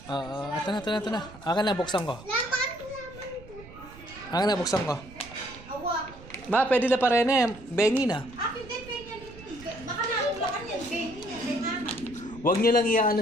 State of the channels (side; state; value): right; noise; rumble, 18 dB below the sound